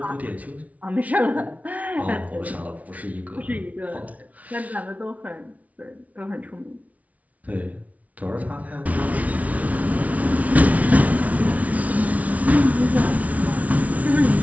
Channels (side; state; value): left; late; 0.069 ms